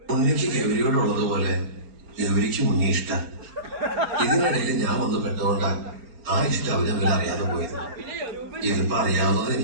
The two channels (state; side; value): late; left; 4.4 ms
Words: ഉണ്ണിക്ക് ഗൗരിയോടുള്ളതുപോലെ ഗൗരിക്ക് ഉണ്ണി ഇഷ്ടം. ഇതിനിടയിൽ ഞാൻ വന്ന് പെട്ടുകൊണ്ടാ ആ ഇഷ്ടം അവരവരെ അറിയാതെ പോയത്. ഇതിപ്പോ അറിയാവുന്നത്